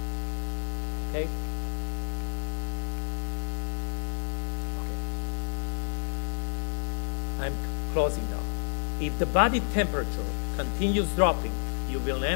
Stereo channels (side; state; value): right; silent; digital silence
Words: Okay? Okay. I'm closing now. If the body temperature continues dropping, you will